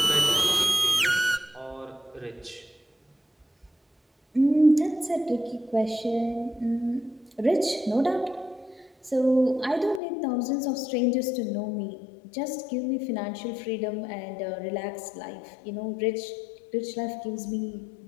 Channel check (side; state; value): right; drops out; at 10.0 s